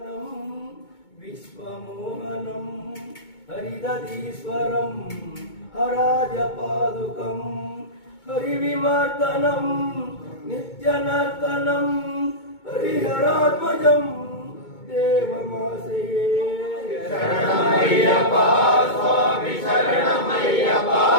విశ్వమోహనం హరిదీశ్వరం హరాజపాదుకం హరివిమర్దనం నిత్యనర్తనం హరిహరాత్మజం దేవమాశ్రయే శరణమయ్యప్ప స్వామి శరణమయ్యప్ప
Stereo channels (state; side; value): late; right; 2.2 ms